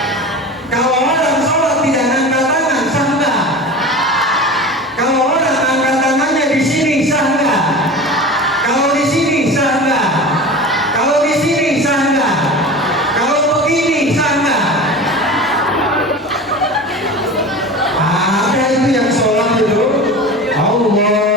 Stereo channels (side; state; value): both; normal; correlation 0.32